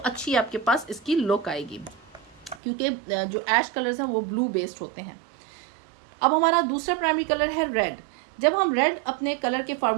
आपके पास इसकी लुक आएगी, क्योंकि जो ऐश कलर्स हैं वो ब्लू बेस्ड होते हैं। अब हमारा दूसरा प्राइमरी कलर है रेड। जब हम रेड अपने कलर के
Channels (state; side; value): drops out; left; at 2.6 s